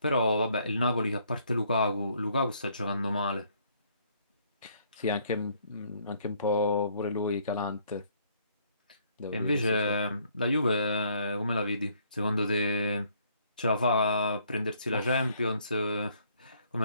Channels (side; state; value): both; inverted; correlation -0.66